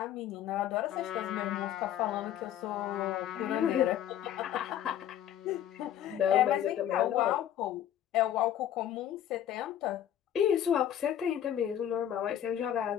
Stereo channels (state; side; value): quieter; right; 10.8 dB